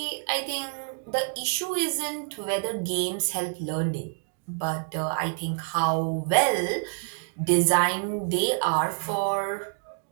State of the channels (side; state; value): left; silent; 60 dB below the other